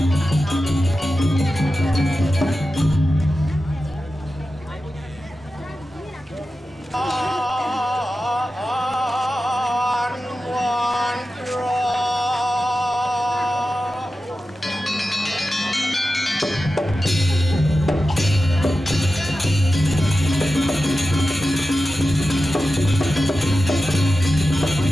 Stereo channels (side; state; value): both; normal; correlation 0.93